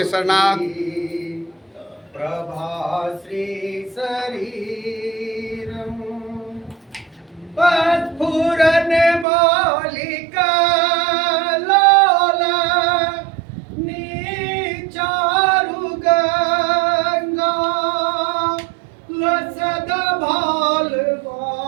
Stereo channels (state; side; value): drops out; left; at 9.2 s